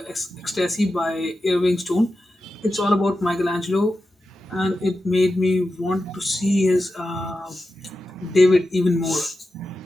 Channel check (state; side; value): normal; both; correlation 0.91